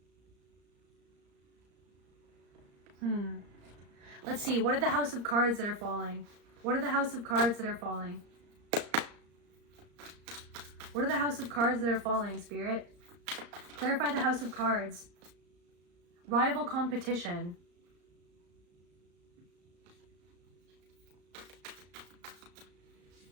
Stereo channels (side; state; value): left; late; 35 ms